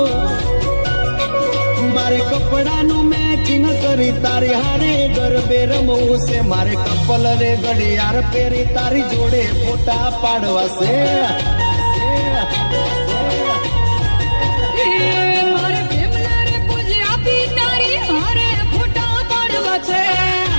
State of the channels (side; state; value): both; inverted; correlation -1.00